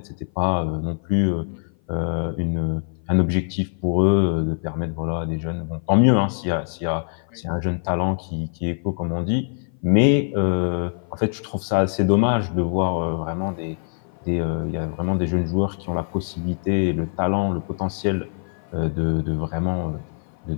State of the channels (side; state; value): right; silent; 56 dB below the other